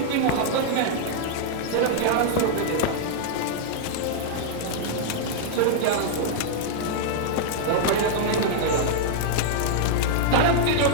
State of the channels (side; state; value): both; different; correlation -0.02